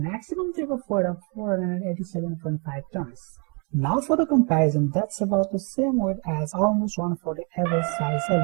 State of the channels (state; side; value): quieter; left; 35.2 dB